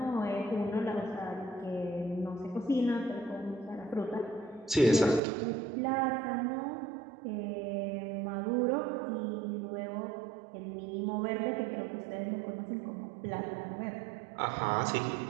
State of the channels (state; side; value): drops out; left; at 5.2 s